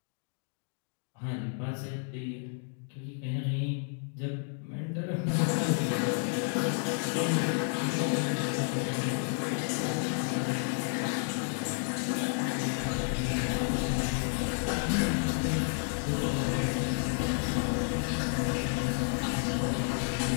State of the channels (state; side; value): silent; right; 57 dB below the other